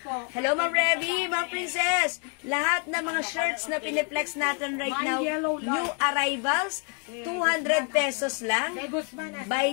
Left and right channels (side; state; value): right; quieter; 37.2 dB